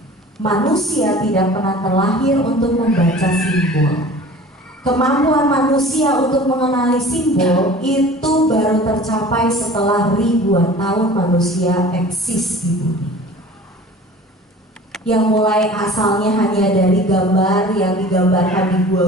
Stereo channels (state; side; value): normal; both; correlation 0.43